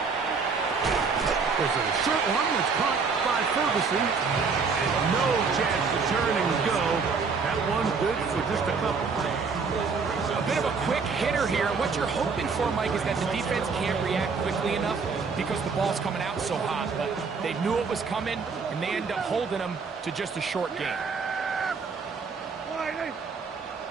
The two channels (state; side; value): quieter; left; 5.0 dB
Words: There's a short one that's caught by Ferguson. And no chance to turn and go. That one's good for just a couple. A bit of a quick hitter here. What you're hoping for, Mike, is that the defense can't react quickly enough because the ball's coming out so hot. But they knew it was coming, and they end up holding them to just a short game.